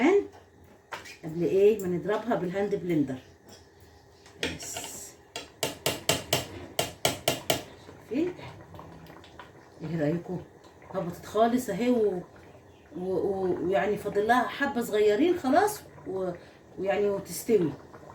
قبل ايه ما نضربها بالهاند بلندر. بس شايفين؟ ايه رايكم؟ هبطت خالص اهي ويعني فاضل لها حبه صغيرين خلاص ويعني وتستوي.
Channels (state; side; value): identical; both; correlation 1.00